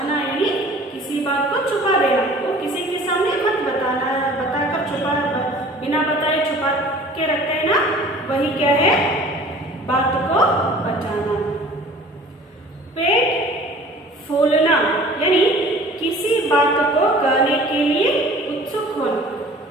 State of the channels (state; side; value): normal; both; correlation 0.47